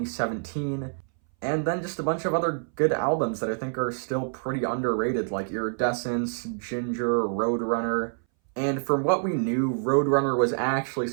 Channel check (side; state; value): left; silent; 60 dB below the other